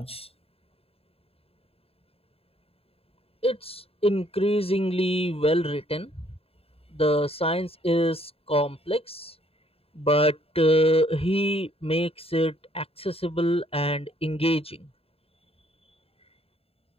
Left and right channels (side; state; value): right; late; 0.28 ms